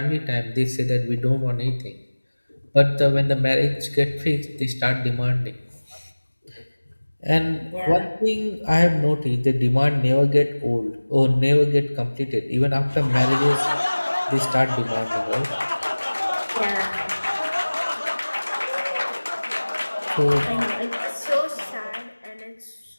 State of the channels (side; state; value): both; inverted; correlation -1.00